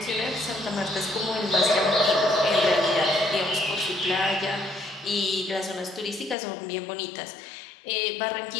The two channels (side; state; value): right; drops out; at 6.4 s